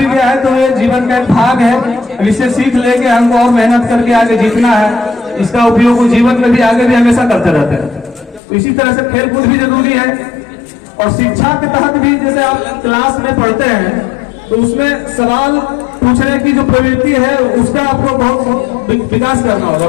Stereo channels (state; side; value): drops out; right; at 8.4 s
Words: गया है तो ये जीवन का एक भाग है, इससे सीख लेके हमको और मेहनत करके आगे जीतना है। इसका उपयोग जीवन में भी आगे भी हमेशा करते रहते हैं। तो इसी तरह से खेल कूद भी जरूरी है। और शिक्षा के तहत भी जैसे आप क्लास में पढ़ते हैं तो उसमें सवाल पूछने की जो प्रवृत्ति है उसका आपको बहुत विकास करना होगा।